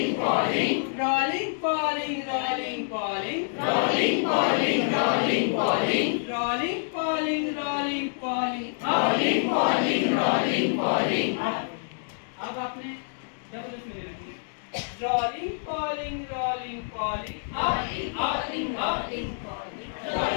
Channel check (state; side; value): silent; right; digital silence